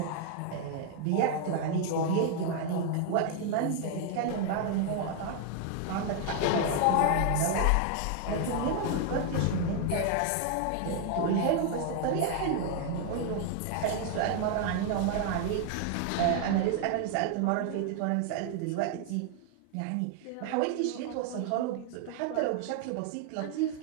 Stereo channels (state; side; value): different; both; correlation 0.00